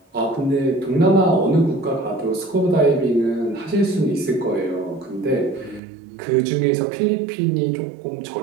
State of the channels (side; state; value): left; drops out; at 5.8 s